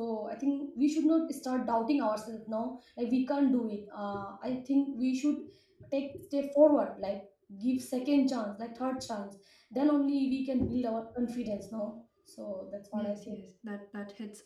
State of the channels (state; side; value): identical; both; correlation 1.00